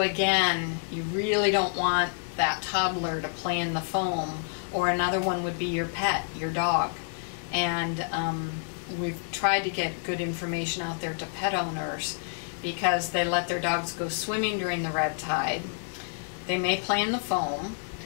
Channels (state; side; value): silent; right; digital silence